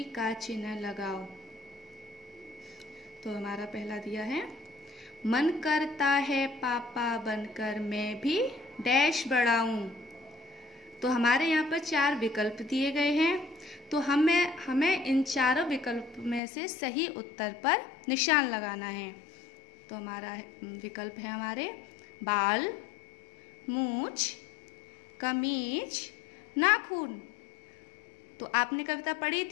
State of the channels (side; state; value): right; drops out; at 16.4 s